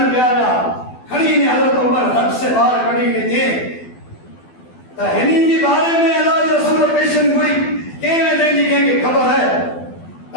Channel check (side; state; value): right; late; 12 ms